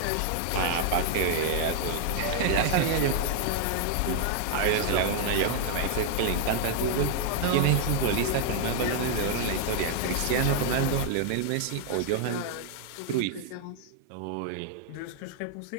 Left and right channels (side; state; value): both; different; correlation 0.00